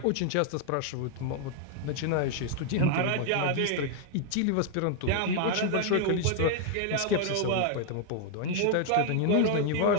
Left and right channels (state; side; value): different; both; correlation 0.00